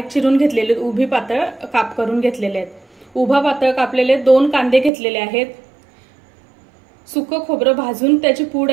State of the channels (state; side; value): drops out; left; at 4.9 s